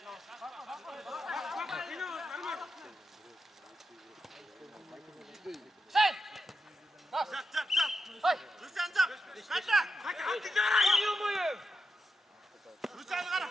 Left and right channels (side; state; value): both; normal; correlation 0.88